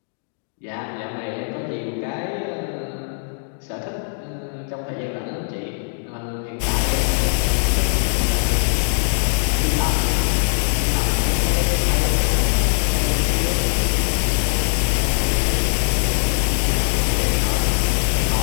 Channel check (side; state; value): right; silent; digital silence